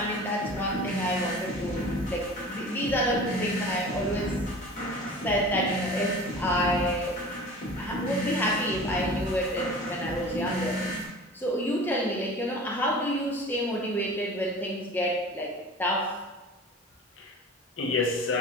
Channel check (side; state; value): both; normal; correlation 0.39